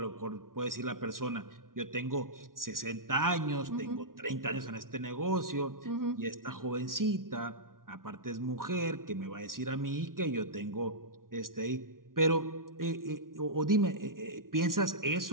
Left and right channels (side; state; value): left; late; 0.91 ms